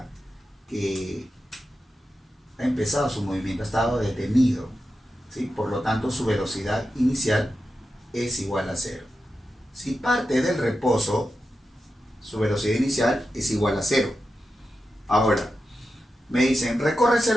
que ha empezado su movimiento, ha estado detenido, ¿sí? Por lo tanto, su velocidad inicial es igual a 0. Si parte del reposo, su velocidad inicial es igual a 0. Ahora, me dicen, recorre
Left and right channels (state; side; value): normal; both; correlation 0.90